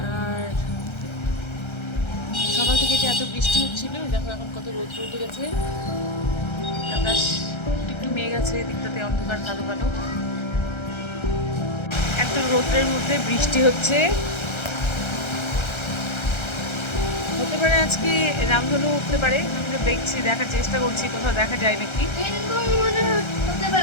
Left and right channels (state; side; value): late; right; 1.3 ms